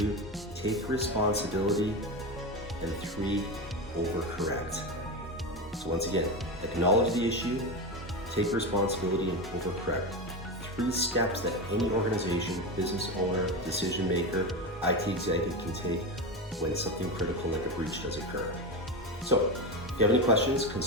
take responsibility. And 3, overcorrect. So once again, acknowledge the issue, take responsibility, and overcorrect. 3 steps that any organization, business owner, decision maker, IT executive can take when something critical like a breach does occur. So if you have any questions,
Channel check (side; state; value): both; normal; correlation 0.18